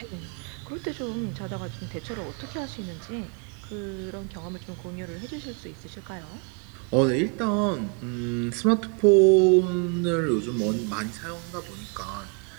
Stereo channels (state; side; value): quieter; left; 35.8 dB